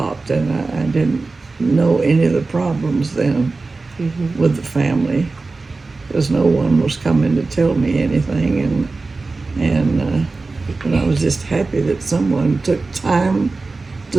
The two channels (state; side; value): quieter; left; 3.7 dB